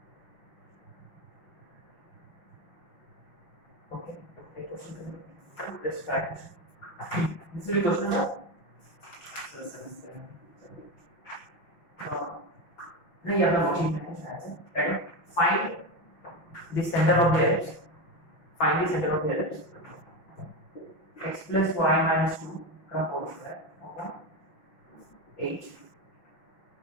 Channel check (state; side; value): late; right; 5.9 ms